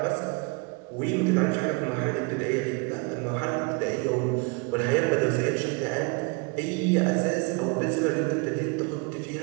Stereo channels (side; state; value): left; quieter; 30.4 dB